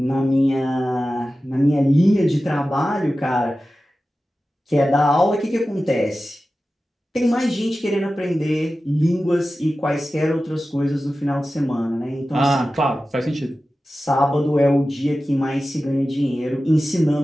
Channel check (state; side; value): normal; both; correlation 0.94